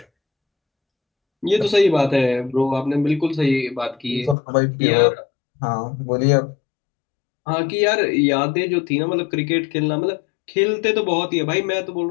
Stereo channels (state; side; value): drops out; right; at 4.4 s